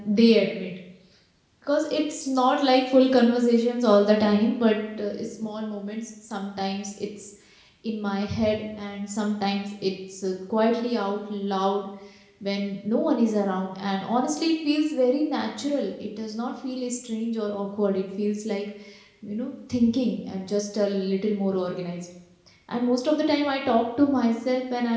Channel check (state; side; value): identical; both; correlation 1.00